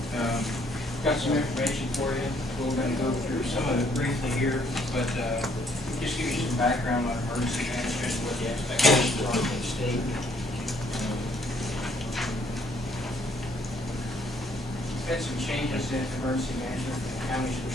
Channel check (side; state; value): both; normal; correlation 0.66